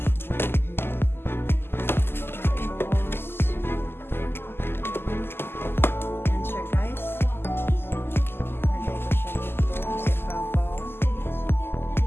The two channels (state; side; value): late; right; 0.11 ms